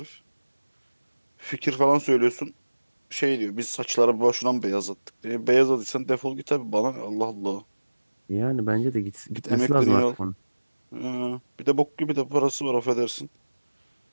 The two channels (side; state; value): both; inverted; correlation -1.00